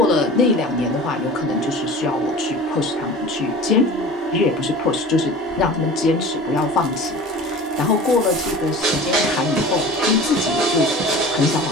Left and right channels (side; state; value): both; normal; correlation 0.39